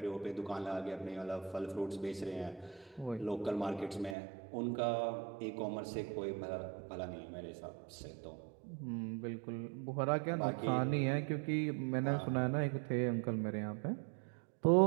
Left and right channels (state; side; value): drops out; left; at 4.2 s